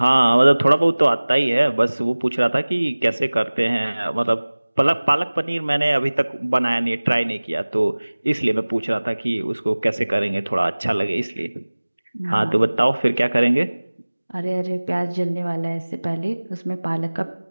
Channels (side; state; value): both; inverted; correlation -1.00